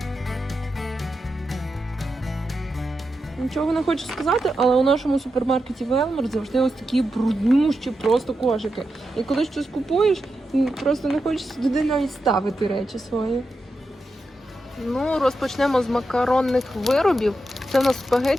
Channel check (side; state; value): both; normal; correlation 0.88